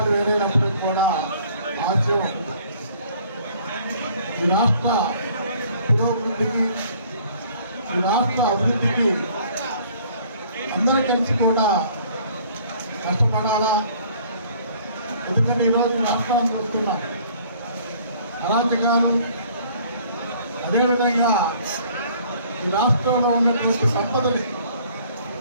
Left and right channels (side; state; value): both; inverted; correlation -0.57